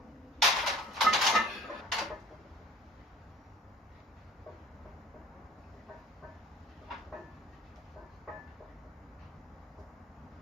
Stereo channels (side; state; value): both; normal; correlation 0.47